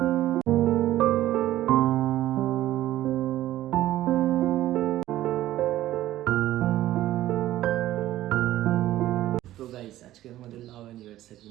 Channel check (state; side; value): quieter; left; 14.3 dB